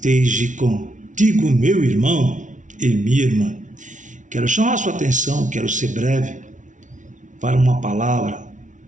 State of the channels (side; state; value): left; late; 0.37 ms